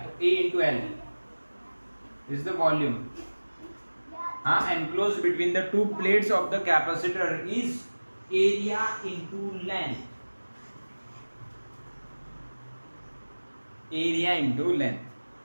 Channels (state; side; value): inverted; both; correlation -1.00